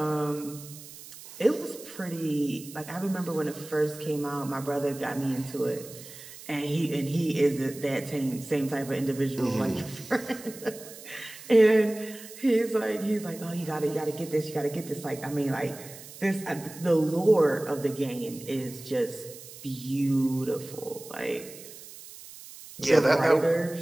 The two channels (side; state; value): right; noise; hiss, 16 dB below the sound